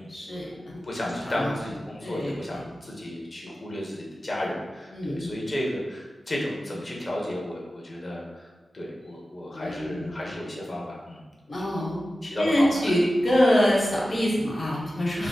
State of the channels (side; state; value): both; normal; correlation 0.94